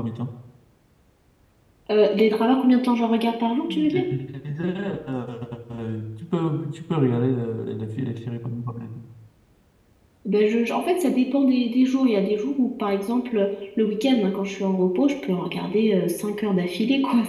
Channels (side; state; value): both; identical; correlation 1.00